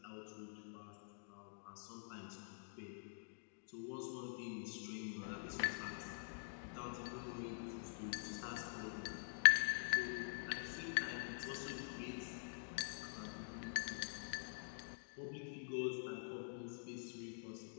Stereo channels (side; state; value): right; silent; digital silence